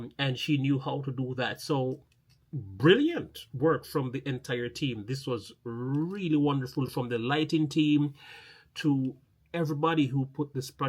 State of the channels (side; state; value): both; identical; correlation 1.00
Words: she knew how to do that. So brilliant work from the entire team. This was really wonderful, from the lighting team to everybody who put this